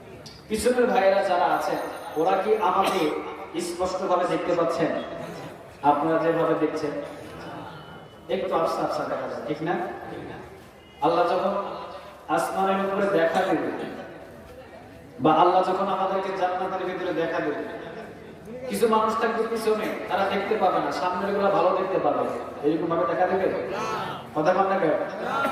পিছনের ভাইয়েরা যারা আছেন, ওরা কি আমাকে স্পষ্টভাবে দেখতে পাচ্ছেন? আপনারা যেভাবে দেখছেন একটু আফসা আফসা দেখা যায়, ঠিক না? আল্লাহ যখন আসমানের উপরে দেখা দেবে, বা আল্লাহ যখন আমাদেরকে জান্নাতের ভিতরে দেখা দেবে, কিছু মানুষ থাকবে পিছনে, তারা দেখতে পাবে না, সামনের গুলা ভালো দেখতে পাবে। এরকম ভাবে দেখা দেবে? কথা বল না কেন?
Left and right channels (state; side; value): identical; both; correlation 1.00